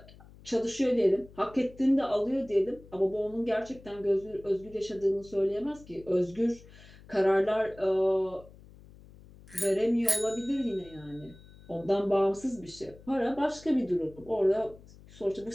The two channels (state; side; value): noise; left; hum, 22 dB below the sound